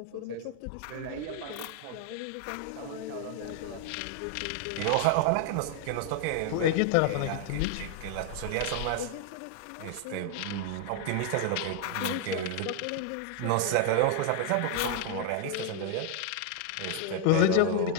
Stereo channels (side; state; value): both; different; correlation 0.00